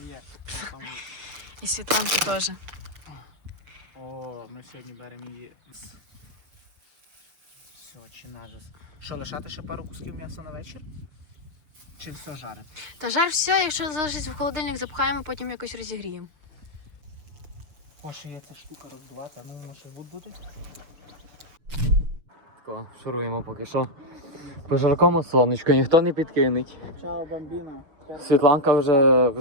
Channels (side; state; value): left; late; 6.7 ms